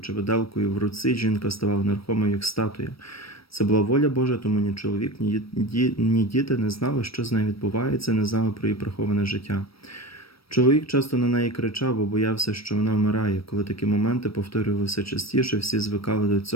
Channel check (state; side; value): late; right; 0.75 ms